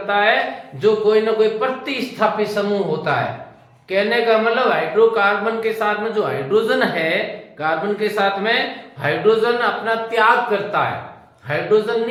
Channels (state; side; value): identical; both; correlation 1.00